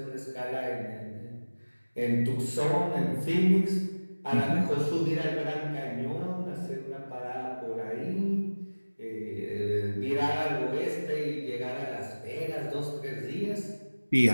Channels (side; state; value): both; inverted; correlation -1.00